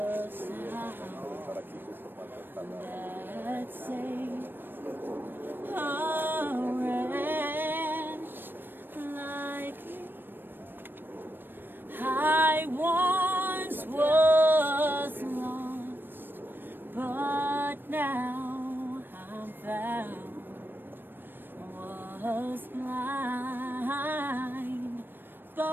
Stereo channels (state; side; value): late; left; 0.095 ms